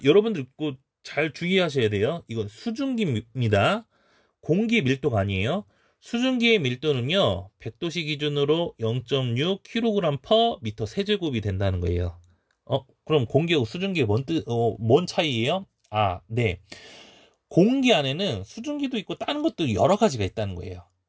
여러분들 꼭 잘 주의하셔야 돼요. 이건 수증기입니다. 공기 밀도가 아니에요. 수증기의 밀도는요, 100도씨 기준으로 0.6kg/m 세제곱이 된다는 거예요. 그럼 공기하고 수증기의 뭔 차이예요? 네. 공기 안에는 수증기도 있고 다른 것도 여러 가지가 있다는 거예요.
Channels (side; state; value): both; identical; correlation 1.00